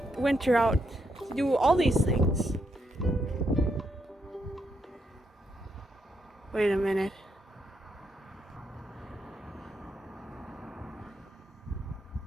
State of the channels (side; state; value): both; normal; correlation 0.79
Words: winter out to do all these things. Wait a minute.